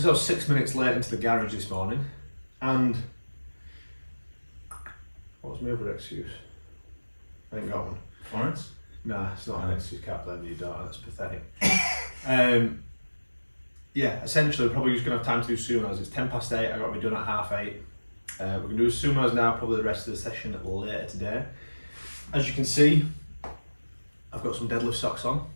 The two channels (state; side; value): inverted; both; correlation -1.00